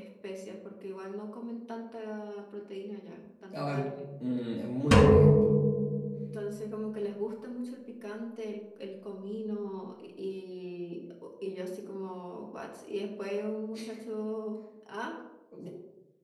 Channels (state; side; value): identical; both; correlation 1.00